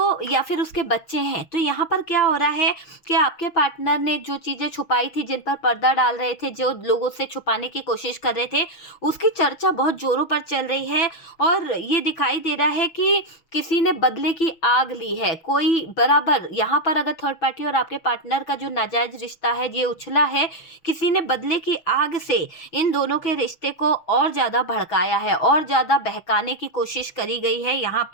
या फिर उसके बच्चे हैं, तो यहाँ पर क्या हो रहा है कि आपके पार्टनर ने जो चीज़ें छुपाई थी, जिन पर पर्दा डाल रहे थे, जो लोगों से छुपाने की कोशिश कर रहे थे, उसकी चर्चा बहुत ज़ोरों पर चल रही है और ये दिखाई दे रहा है कि किसी ने बदले की आग ली है। कोई बराबर यहाँ पर अगर थर्ड पार्टी और आपके पार्टनर का जो नाजायज़ रिश्ता है, ये उछला है, किसी ने बदले की आग से इन दोनों के रिश्ते को और ज़्यादा भड़काया है और ज़्यादा बहकाने की कोशिश करी गई है यहाँ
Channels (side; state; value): right; late; 6.2 ms